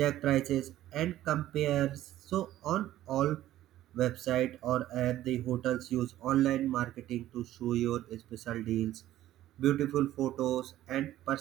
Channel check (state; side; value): quieter; left; 13.8 dB